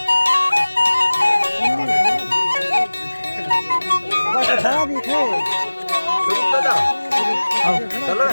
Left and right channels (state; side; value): inverted; both; correlation -1.00